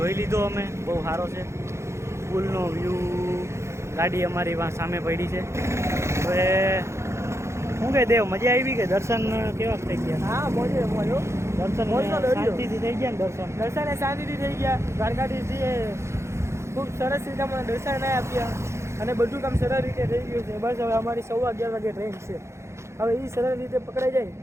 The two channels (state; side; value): late; left; 0.13 ms